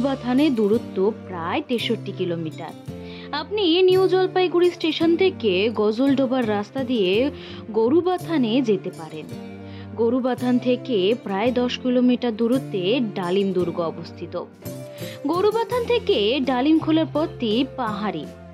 দূরত্ব প্রায় 63 কিলোমিটার। আপনি নিউ জলপাইগুড়ি স্টেশন থেকে গজলডোবার রাস্তা দিয়ে গরুবাথানে যেতে পারেন। গরুবাথান থেকে প্রায় 10 কিলোমিটার দূরত্বে ডালিম দুর্গ অবস্থিত। গরুবাথান থেকে ডালিমখোলার পথটি পাহাড়ি,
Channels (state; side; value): identical; both; correlation 1.00